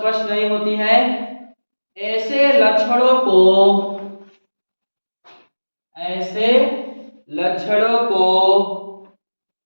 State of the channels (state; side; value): inverted; both; correlation -1.00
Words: नहीं होती है। ऐसे लक्षणों को